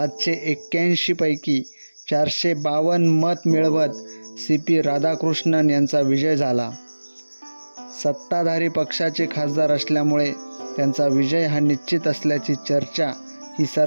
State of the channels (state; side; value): inverted; both; correlation -1.00